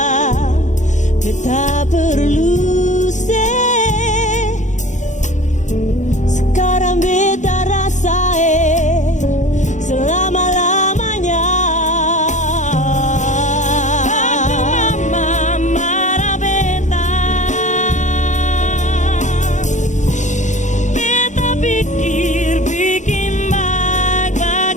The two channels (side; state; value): right; late; 0.35 ms